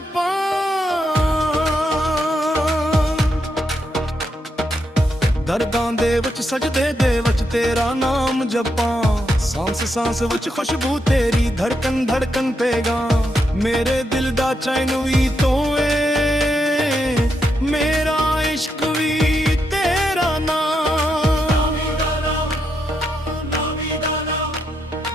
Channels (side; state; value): both; normal; correlation 0.81